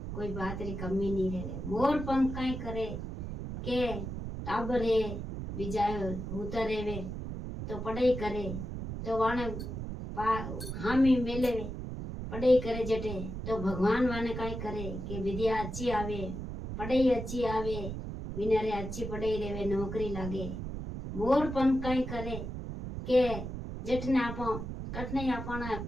कोई बात री कमी नहीं रेवे। मोर पंख कई करे के टाबर है बिजाय होता रेवे तो पढ़ाई करे तो वाने हामी मेले पढ़ाई करे जटे तो भगवान वाने कई करे कि विद्या अच्छी आवे, पढ़ाई अच्छी आवे, विनारे अच्छी पढ़ाई रेवे, नौकरी लागे। मोर पंख कई करे के जटने आप कटने अपना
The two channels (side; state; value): right; noise; rumble, 6 dB below the sound